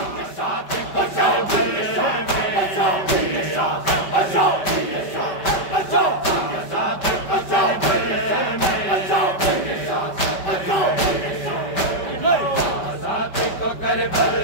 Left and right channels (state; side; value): late; right; 5.2 ms